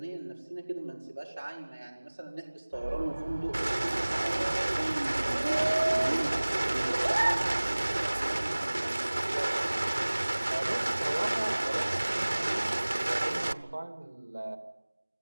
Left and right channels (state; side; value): inverted; both; correlation -1.00